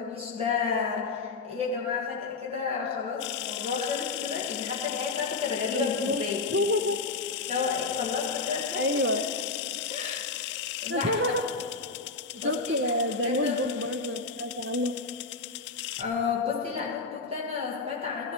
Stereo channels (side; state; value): right; quieter; 4.1 dB